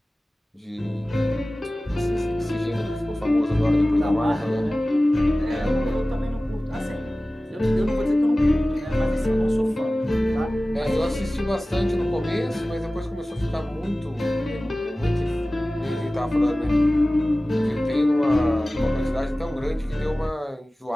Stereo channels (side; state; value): both; normal; correlation 0.97